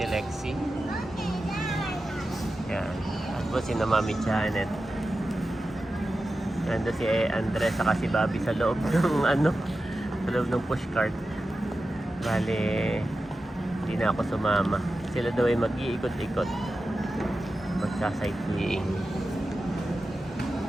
Lexi. Yan. At po si na Mami Janet. Nandun si Andres saka si Bobby sa loob ng ano, sa loob ng pushcart. Bale, hindi na ako sumama. Sila daw ay mag-iikot-ikot. Magsa-sightseeing.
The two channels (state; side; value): normal; both; correlation 0.92